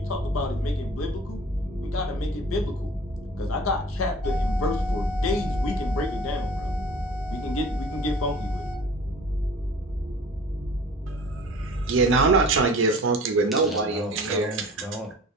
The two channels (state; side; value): normal; both; correlation 0.45